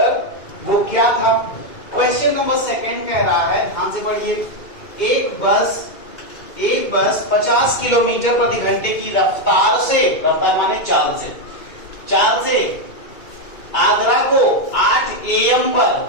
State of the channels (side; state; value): right; late; 2.4 ms